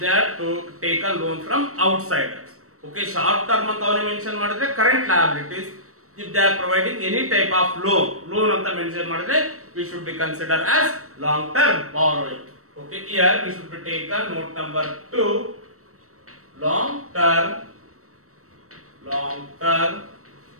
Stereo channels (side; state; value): left; late; 0.64 ms